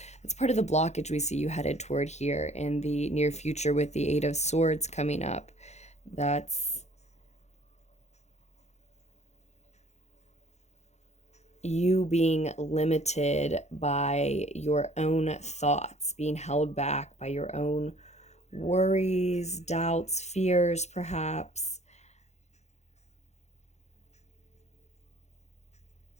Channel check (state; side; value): late; right; 0.33 ms